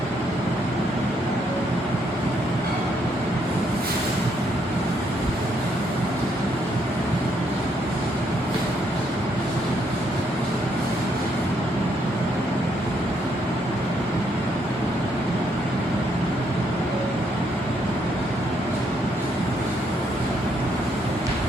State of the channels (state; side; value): normal; both; correlation 0.73